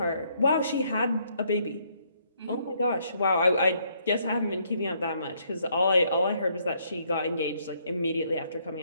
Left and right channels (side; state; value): both; inverted; correlation -0.70